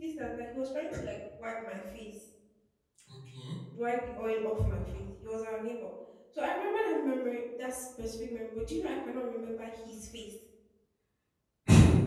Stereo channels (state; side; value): identical; both; correlation 1.00